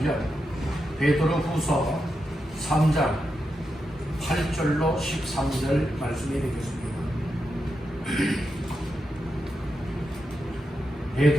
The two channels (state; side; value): normal; both; correlation 0.87